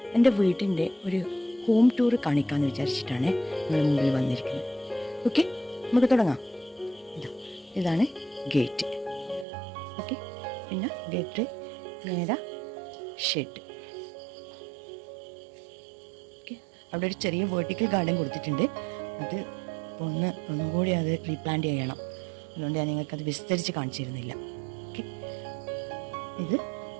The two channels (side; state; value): left; drops out; at 9.5 s